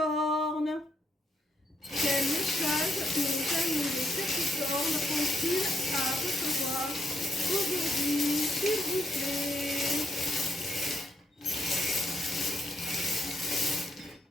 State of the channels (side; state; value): both; normal; correlation 0.77